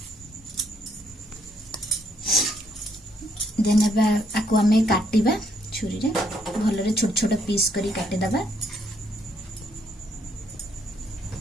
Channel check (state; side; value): normal; both; correlation 0.71